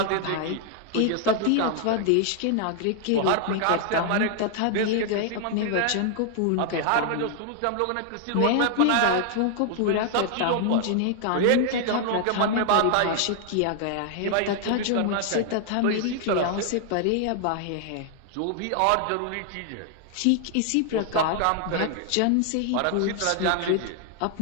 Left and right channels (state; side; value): different; both; correlation 0.00